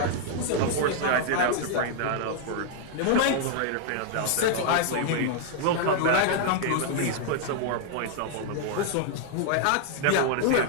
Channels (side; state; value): both; different; correlation -0.01